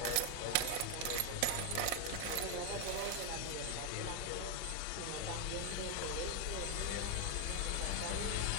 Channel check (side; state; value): both; different; correlation 0.01